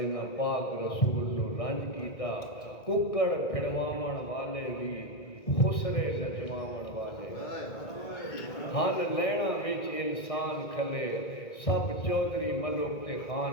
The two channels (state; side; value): late; right; 1.8 ms